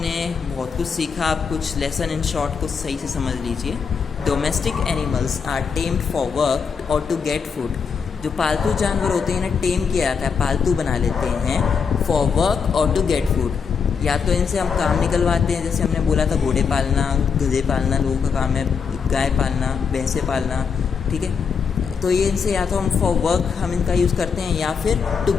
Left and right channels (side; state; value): right; quieter; 6.0 dB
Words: बहुत कुछ सीखा, आप कुछ लेसन इन शॉर्ट कुछ सही से समझ लीजिए। Domestic animals are tamed for work और टू गेट फूड। जो पालतू जानवर होते हैं इन्हें टेम किया जाता है, पालतू बना लेते हैं फॉर वर्क और टू गेट फूड। या तो इनसे हम काम निकलवाते हैं, जैसे हमने बोला था घोड़े पालना, गधे पालना लोगों का काम है, गाय पालना, भैंसे पालना, ठीक है। तो ये इनसे या तो हम फॉर वर्क हम इनका यूज़ करते हैं, या फिर टू